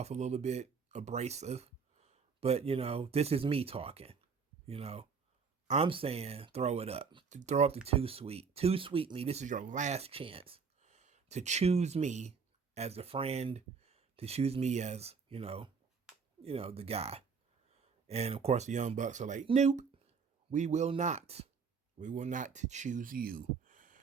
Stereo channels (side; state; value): left; quieter; 5.7 dB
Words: a little bit abrasive, but this is me talking. I'm saying throw it up. Throw up the Too Sweet. Too Sweet me. This is your last chance to choose me as a friend, to choose me as, the guy. And of course the Young Bucks are like, nope. We will not choose you,